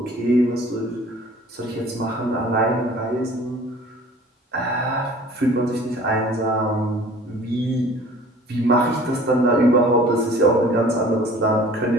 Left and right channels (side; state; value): both; normal; correlation 0.48